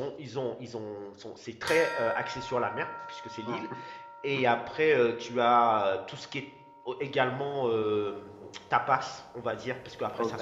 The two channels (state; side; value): identical; both; correlation 1.00